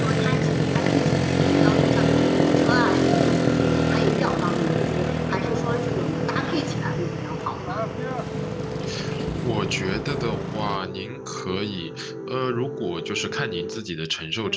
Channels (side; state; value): both; identical; correlation 1.00